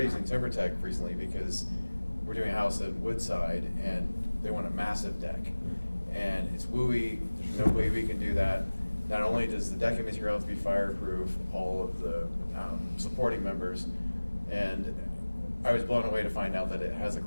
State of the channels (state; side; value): inverted; both; correlation -1.00